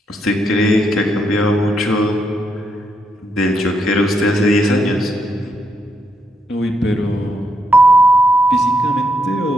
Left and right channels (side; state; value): both; normal; correlation 0.79